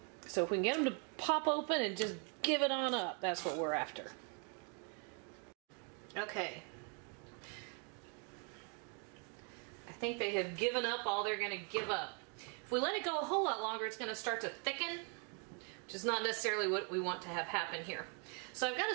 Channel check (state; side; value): quieter; left; 38.2 dB